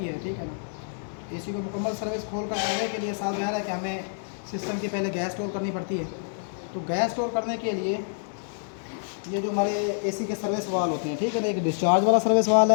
है, ठीक है ना। एसी को मुकम्मल सर्विस खोल कर करने के लिए साथ ज़ाहिर है कि हमें सिस्टम की पहले गैस स्टोर करनी पड़ती है। तो गैस स्टोर करने के लिए ये जो हमारे एसी के सर्विस वाल होते हैं, ठीक है ना, एक डिस्चार्ज वाला सर्विस वाल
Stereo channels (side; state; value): right; silent; digital silence